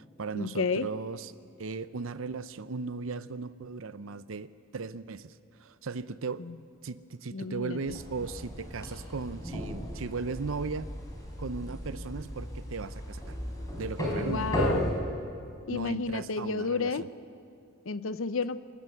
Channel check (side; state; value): both; normal; correlation 0.16